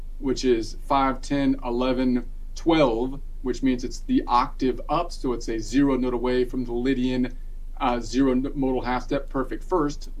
which is 5, 10, 11, 12, which means it's the octave up, so it's a 0 note away from the Lydian 0 modal half step perfect first.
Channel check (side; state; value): both; identical; correlation 1.00